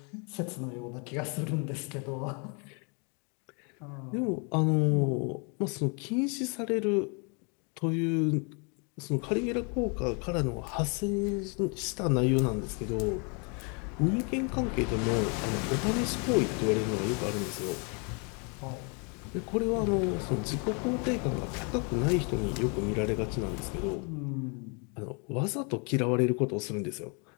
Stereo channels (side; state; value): right; quieter; 35.3 dB